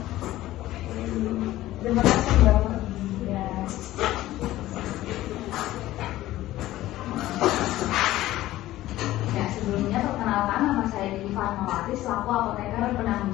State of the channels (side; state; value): right; quieter; 15.5 dB